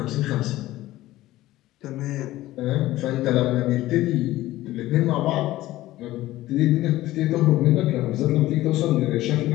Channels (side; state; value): right; quieter; 16.2 dB